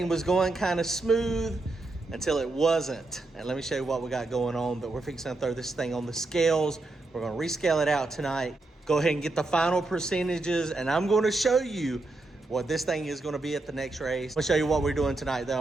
was going kind of smooth until it wasn't. And let me show you what we got going on. But we're fixing to throw this thing on the scales. We're going to rescale it out tonight. Go ahead and get the final percentages, and I'm going to show you what this thing is going to be at the next race. I'm going to show you what we're doing tonight, though.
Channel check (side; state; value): left; quieter; 3.1 dB